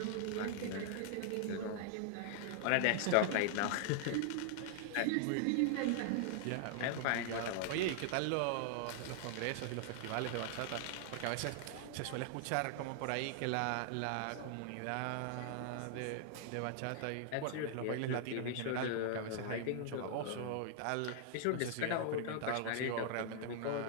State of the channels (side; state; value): both; different; correlation 0.00